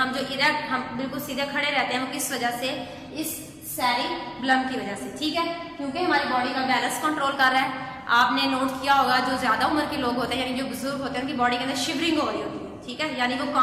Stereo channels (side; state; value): both; identical; correlation 1.00